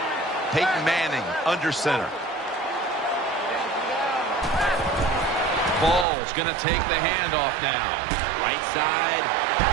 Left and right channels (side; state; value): left; drops out; at 6.1 s